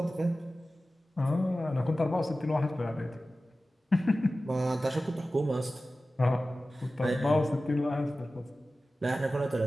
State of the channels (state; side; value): normal; both; correlation 0.95